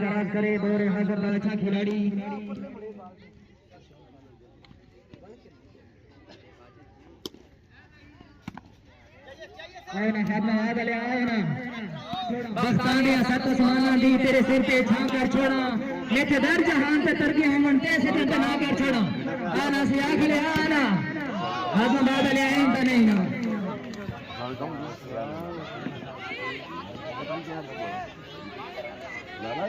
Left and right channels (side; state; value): both; identical; correlation 1.00